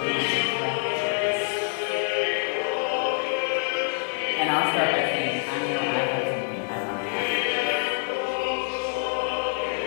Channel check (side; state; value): right; quieter; 38.0 dB